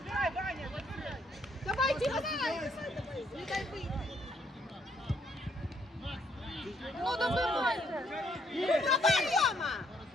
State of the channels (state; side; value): normal; both; correlation 0.69